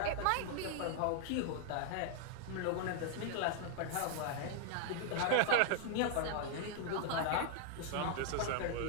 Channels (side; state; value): both; different; correlation 0.00